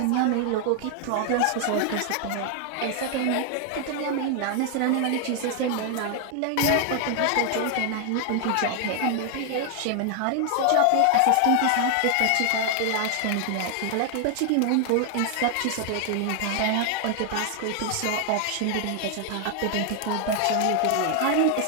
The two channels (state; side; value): different; both; correlation 0.00